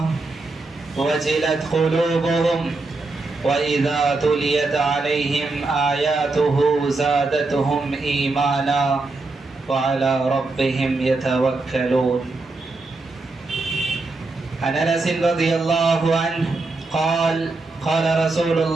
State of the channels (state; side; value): quieter; left; 3.4 dB